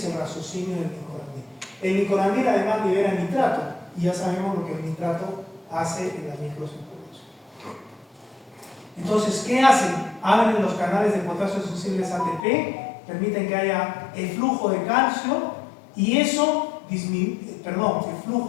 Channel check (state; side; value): drops out; right; at 12.4 s